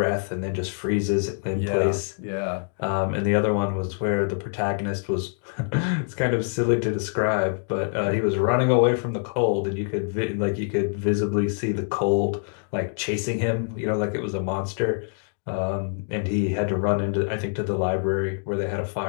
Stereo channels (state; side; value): silent; right; digital silence